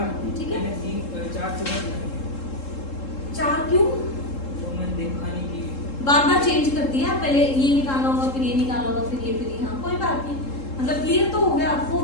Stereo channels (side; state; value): right; late; 3.7 ms